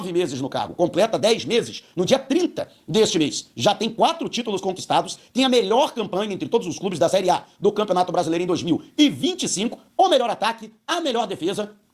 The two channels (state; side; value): identical; both; correlation 1.00